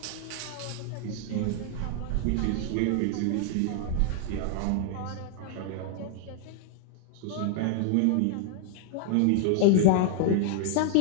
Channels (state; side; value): different; both; correlation 0.00